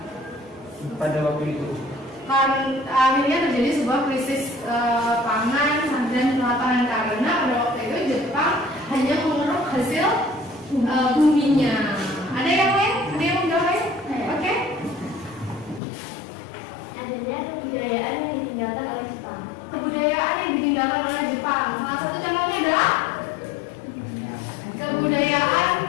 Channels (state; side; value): drops out; right; at 15.8 s